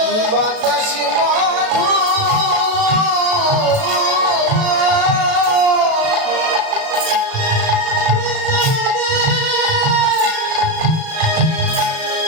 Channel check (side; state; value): left; late; 37 ms